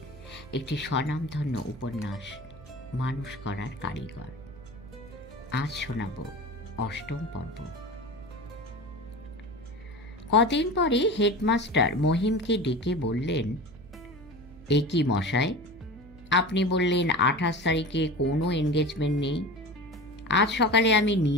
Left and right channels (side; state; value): right; noise; hum, 20 dB below the sound